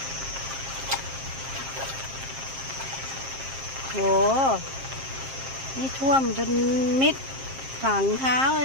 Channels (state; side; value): late; left; 7.5 ms